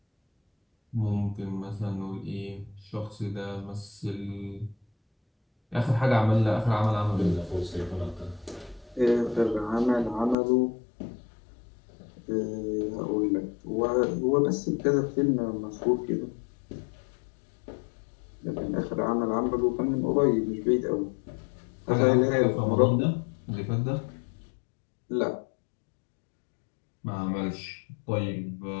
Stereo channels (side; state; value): right; drops out; at 10.4 s